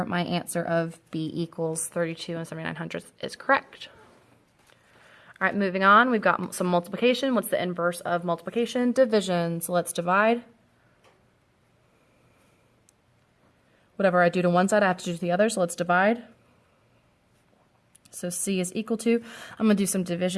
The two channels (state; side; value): identical; both; correlation 1.00